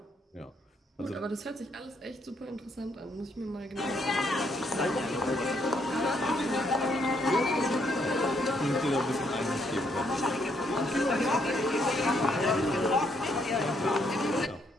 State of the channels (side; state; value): both; normal; correlation 0.72